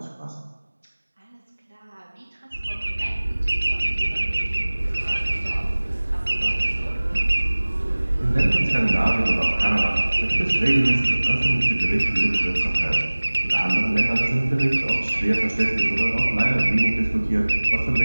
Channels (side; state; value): both; inverted; correlation -1.00